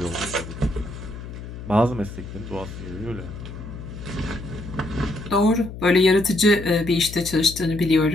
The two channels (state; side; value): noise; left; hum, 11 dB below the sound